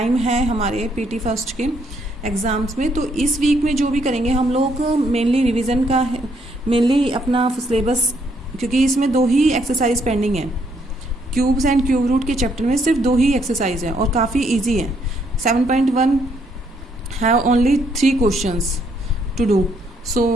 है हमारे पीटी फर्स्ट के एग्ज़ाम्स में, तो इस वीक में जो भी करेंगे हम लोग मेनली रिवीजन का मेनली अपना सिलेबस, क्योंकि इसमें दो ही एक्सरसाइज पेंडिंग है. क्यूब्स एंड क्यूब रूट के चैप्टर में सिर्फ दो ही एक्सरसाइज है और काफ़ी इजी है. 7.1 have only 3 questions to do.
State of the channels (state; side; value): normal; both; correlation 0.71